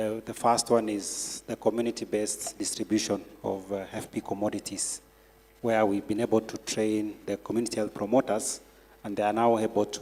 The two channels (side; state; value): both; identical; correlation 1.00